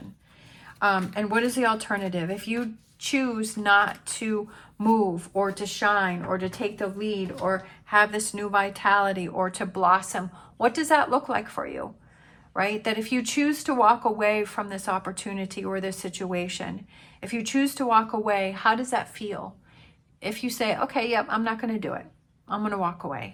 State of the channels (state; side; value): identical; both; correlation 1.00